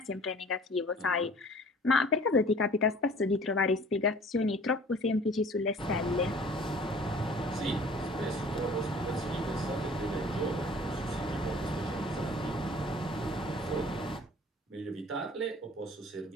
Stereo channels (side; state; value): both; normal; correlation 0.49